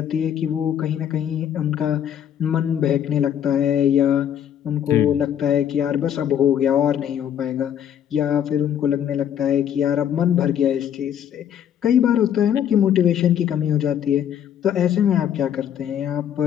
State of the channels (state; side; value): quieter; right; 9.6 dB